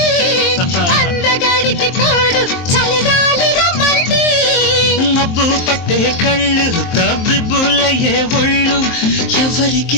అందగాడికి తోడు చలిగాలి రమ్మంది మబ్బు పట్టే కళ్ళు తబ్బిబ్బులయ్యే ఒళ్ళు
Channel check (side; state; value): right; late; 23 ms